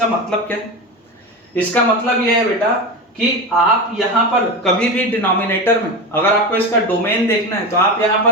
मतलब क्या है? इसका मतलब यह है बेटा कि आप यहां पर कभी भी डिनोमिनेटर में, अगर आपको इसका डोमेन देखना है तो आप यहां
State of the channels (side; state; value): both; normal; correlation 0.22